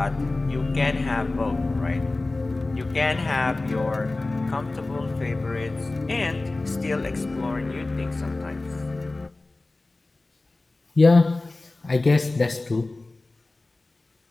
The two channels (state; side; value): quieter; right; 3.1 dB